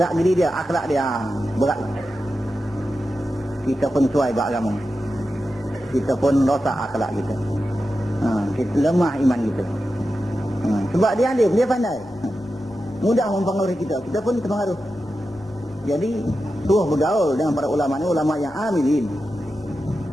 geri dia, akhlak dia, berat. Kita pun suai beragama. Kita pun rosak akhlak kita. Kita lemah iman kita. Sebab dia alim, dia pandai. Mudah mempengaruhi kita, kita pun terpengaruh. Jadi, suruh bergaul dengan para ulama ni, ulama yang amilin.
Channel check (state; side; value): normal; both; correlation 0.91